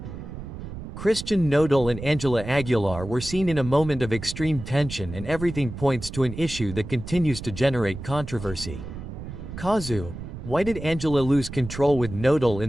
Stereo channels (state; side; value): noise; right; rumble, 10 dB below the sound